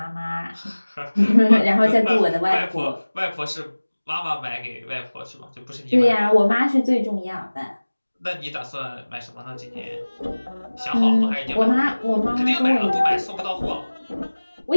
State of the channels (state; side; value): inverted; both; correlation -1.00